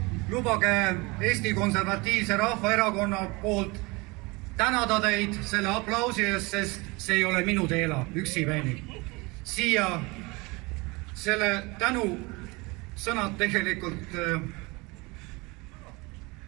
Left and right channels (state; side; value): quieter; left; 25.4 dB